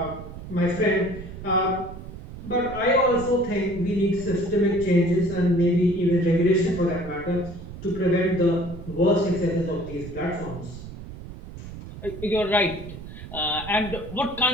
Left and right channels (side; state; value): right; noise; rumble, 12 dB below the sound